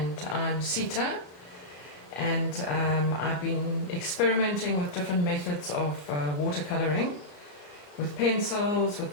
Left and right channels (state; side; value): late; right; 34 ms